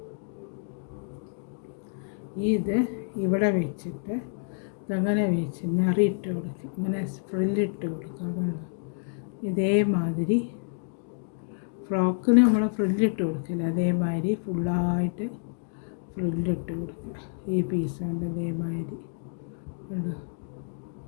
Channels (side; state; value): right; silent; digital silence